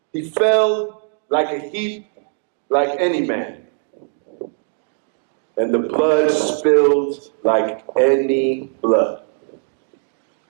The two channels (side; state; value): left; silent; 55 dB below the other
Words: He fell like a heap, like any man. And the blood spilled like any blood.